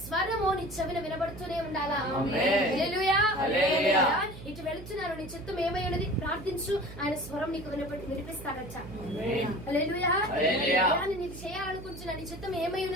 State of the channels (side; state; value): right; noise; hum, 13 dB below the sound